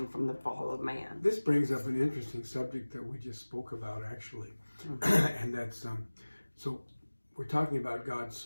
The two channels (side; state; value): both; inverted; correlation -1.00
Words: from the fall of man. This brings up an interesting subject that we just spoke about, actually. And that's, so we're talking about God